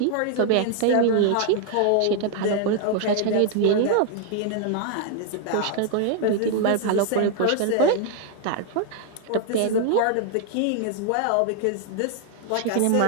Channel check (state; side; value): different; both; correlation 0.00